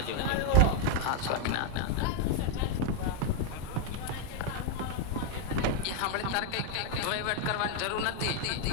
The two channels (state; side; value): different; both; correlation 0.01